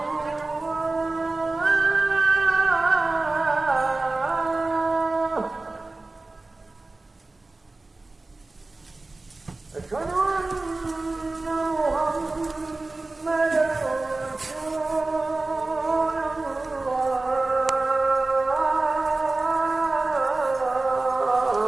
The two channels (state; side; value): quieter; left; 3.2 dB